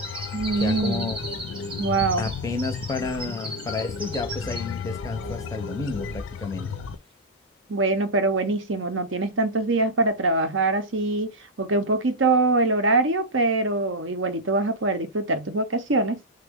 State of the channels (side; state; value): both; normal; correlation -0.01